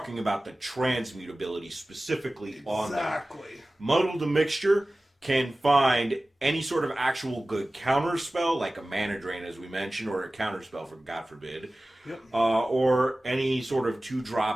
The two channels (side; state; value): both; normal; correlation 0.97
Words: about the transmutability specifically on that. Exactly. Muddle the Mixture can find any sort of actual good counter spell, like a Mana Drain, as we mentioned, or a counter spell, for God forbid, yep. Or any sort of